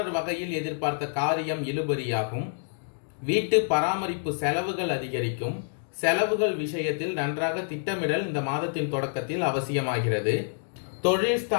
வகையில் எதிர்பார்த்த காரியம் இழுபறியாகும். வீட்டு பராமரிப்பு செலவுகள் அதிகரிக்கும். செலவுகள் விஷயத்தில் நன்றாக திட்டமிடல் இந்த மாதத்தின் தொடக்கத்தில் அவசியமாகிறது. தொழில்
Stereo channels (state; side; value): silent; right; digital silence